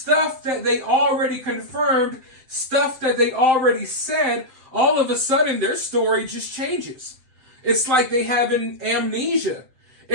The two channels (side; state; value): left; late; 7.8 ms